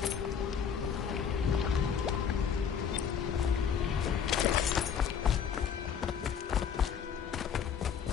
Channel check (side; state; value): right; quieter; 7.5 dB